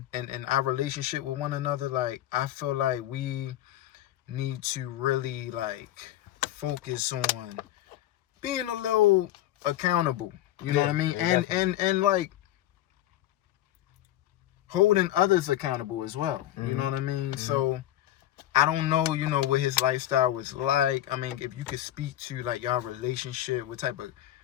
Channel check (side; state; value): right; quieter; 13.4 dB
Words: and our relationship with one another, like, I feel like we need to really like focus on being a little accountable. You know what I mean? And like holding others accountable as well. You know what I mean? So. I don't know, what his lifestyle was like. I mean, if you could speak to, like, y'all relationship, what type of